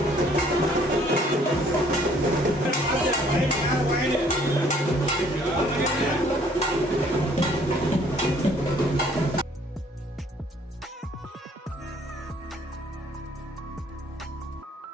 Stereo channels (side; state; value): both; normal; correlation 0.60